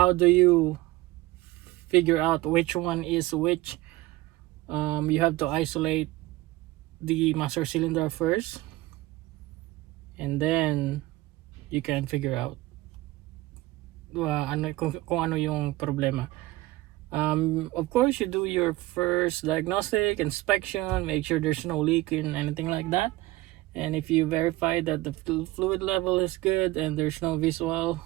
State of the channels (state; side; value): quieter; left; 18.4 dB